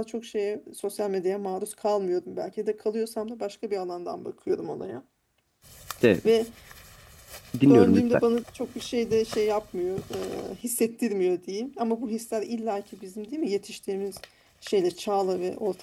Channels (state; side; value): identical; both; correlation 1.00